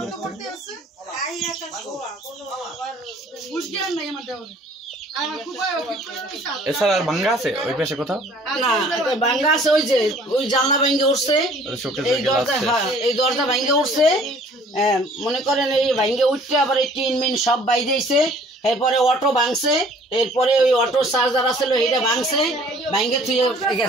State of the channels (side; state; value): both; normal; correlation 0.54